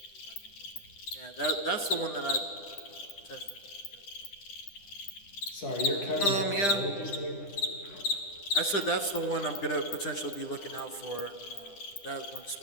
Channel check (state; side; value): late; right; 10 ms